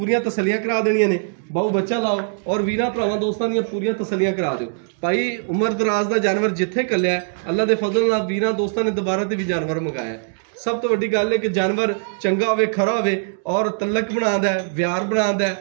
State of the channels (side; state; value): left; silent; digital silence